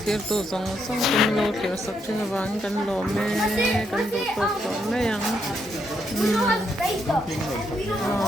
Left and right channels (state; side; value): normal; both; correlation 0.77